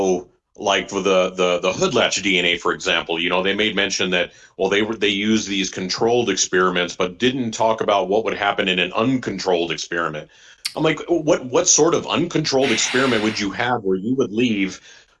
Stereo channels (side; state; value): both; identical; correlation 1.00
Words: like for the hoodlatch DNA, for example, they made mention that, well, they used these controlled experiments, but didn't talk about what would happen in an uncontrolled experiment. I'm like, what sort of uncontrolled experiment would you have where you would leave,